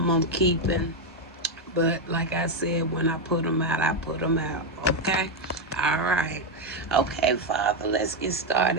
keeping. But like I said, when I put them out, I put them out. Okay? All right. Okay, Father, let's get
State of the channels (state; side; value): normal; both; correlation 0.04